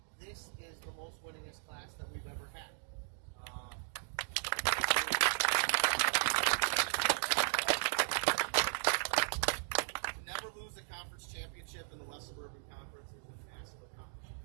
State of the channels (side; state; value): left; quieter; 39.9 dB